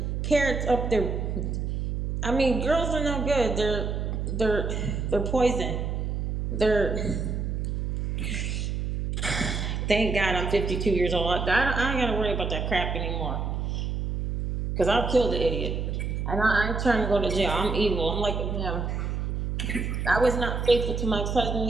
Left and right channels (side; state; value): right; noise; hum, 2 dB below the sound